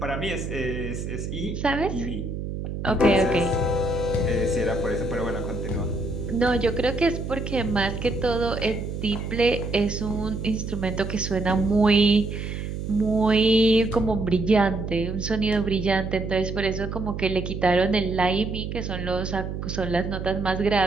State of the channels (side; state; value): right; noise; hum, 5 dB below the sound